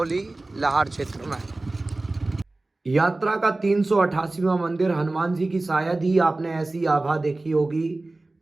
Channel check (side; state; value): left; quieter; 3.0 dB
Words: लाहार क्षेत्र में। यात्रा का 388वां मंदिर हनुमान जी की शायद ही आपने ऐसी आभा देखी होगी।